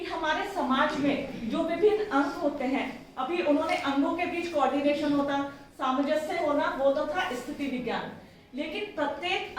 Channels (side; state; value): both; identical; correlation 1.00